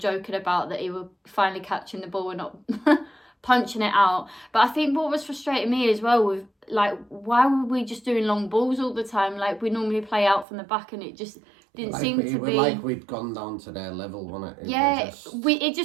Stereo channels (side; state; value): left; drops out; at 10.5 s